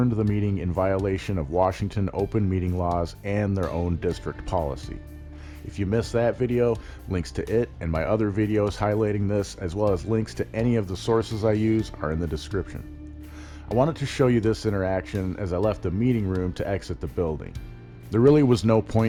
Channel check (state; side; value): identical; both; correlation 1.00